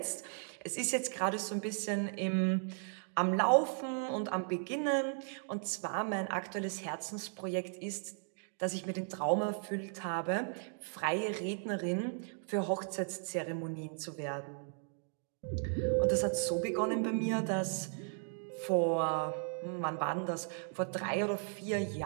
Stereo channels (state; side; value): silent; left; 54 dB below the other